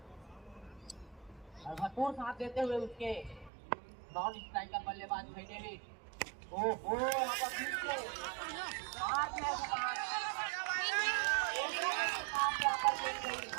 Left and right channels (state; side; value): drops out; left; at 3.5 s